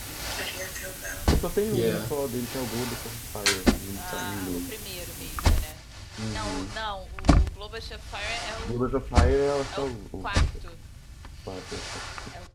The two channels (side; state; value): both; identical; correlation 1.00